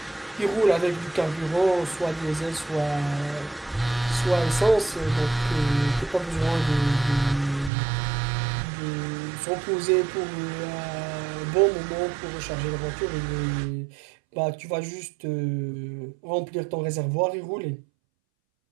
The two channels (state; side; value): drops out; left; at 7.7 s